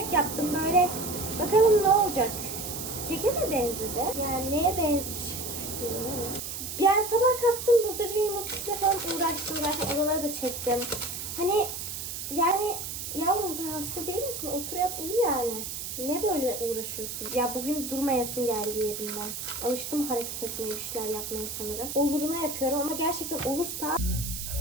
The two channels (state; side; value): noise; right; hiss, 6 dB below the sound